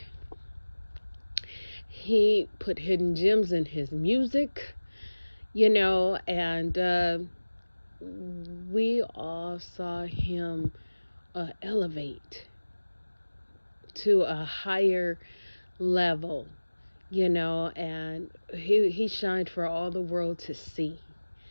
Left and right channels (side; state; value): both; inverted; correlation -1.00